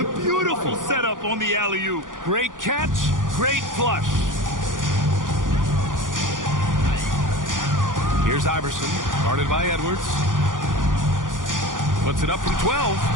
Beautiful setup on the alley-oop. Great catch, great flush. Here's Iverson, guarded by Edwards. Puts it up from 12.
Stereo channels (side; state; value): left; late; 0.88 ms